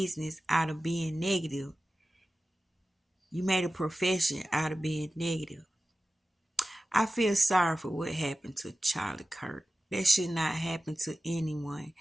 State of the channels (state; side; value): normal; both; correlation 0.94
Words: out of being negative. You made a profession out of being negative. I feel sorry for what happened to Charlie Kirk. That should not happen to anyone.